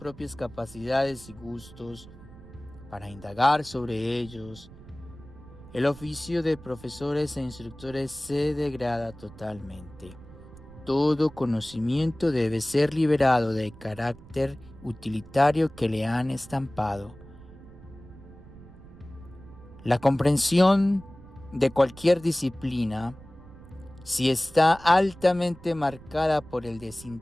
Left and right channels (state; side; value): noise; right; rumble, 19 dB below the sound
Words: capacidades y gustos para indagar sobre ellos, el oficio de profesores e instructores se degrada totalmente. Todo conocimiento debe ser liberado del carácter utilitario que le han estampado. La comprensión de cualquier disciplina, si está altamente marcada por el